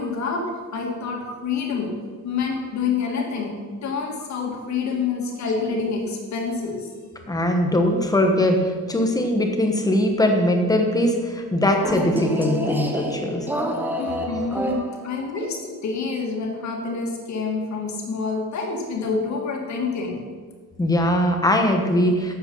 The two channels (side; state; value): both; normal; correlation 0.47